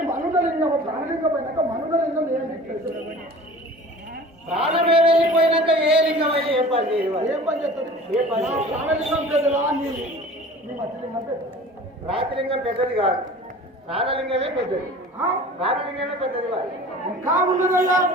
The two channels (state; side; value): normal; both; correlation 0.42